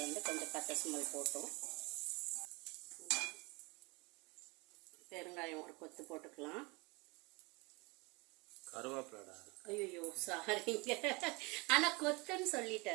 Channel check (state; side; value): quieter; left; 26.9 dB